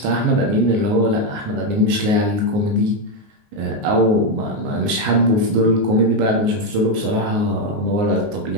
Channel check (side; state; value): left; late; 19 ms